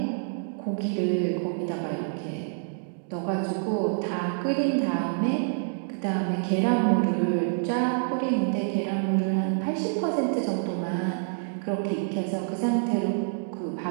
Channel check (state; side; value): silent; left; digital silence